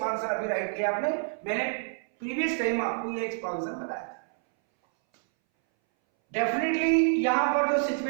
अभी right किया आपने, मैंने प्रीवियस टाइम आपको ये एक्सपांशन बताया था। डेफिनेटली यहां पर जो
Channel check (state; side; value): silent; left; 60 dB below the other